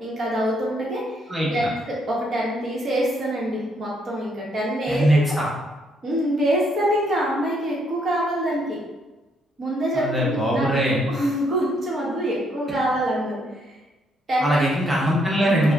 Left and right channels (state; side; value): normal; both; correlation 0.72